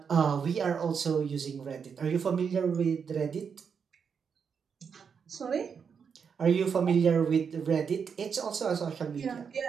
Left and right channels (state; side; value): quieter; left; 6.5 dB